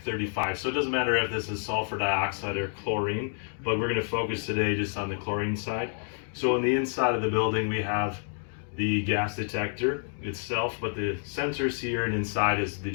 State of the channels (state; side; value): silent; right; 56 dB below the other